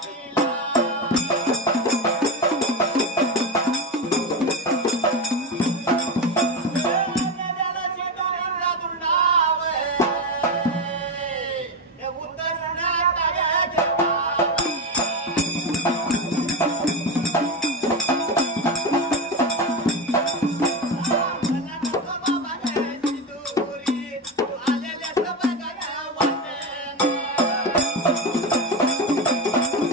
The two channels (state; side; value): normal; both; correlation 0.16